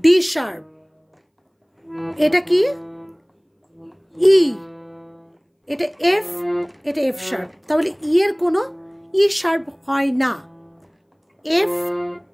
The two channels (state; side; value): identical; both; correlation 1.00